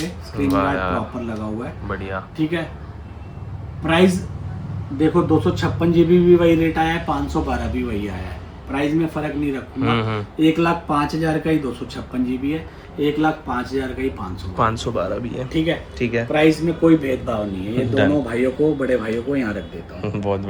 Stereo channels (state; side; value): identical; both; correlation 1.00